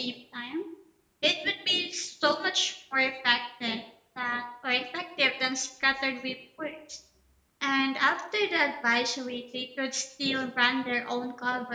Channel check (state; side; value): identical; both; correlation 1.00